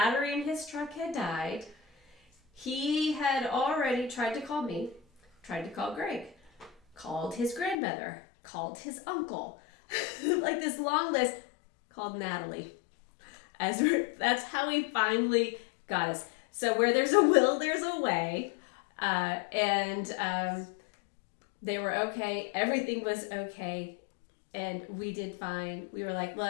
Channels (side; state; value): right; drops out; at 7.8 s